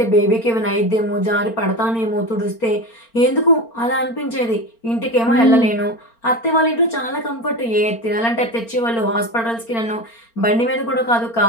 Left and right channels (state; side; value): late; right; 4.4 ms